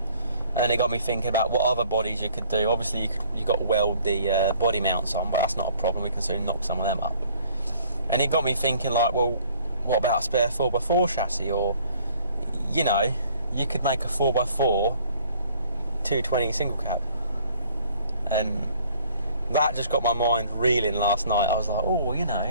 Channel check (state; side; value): inverted; both; correlation -0.57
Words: And it got me thinking about what other bodies you could do. Obviously, you got to weld the body mounts on, but that's not a problem. We can soon knock some of them up. And it got me thinking, like, well, what about a spare 4x4 chassis? Or, you could make a 4x4 220 single cab. And that just got my mind reeling last night. I was like, oh, you